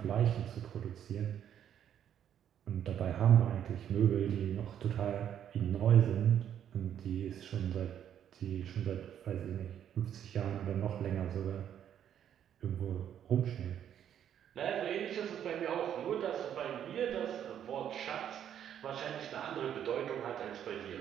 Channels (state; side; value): quieter; left; 9.7 dB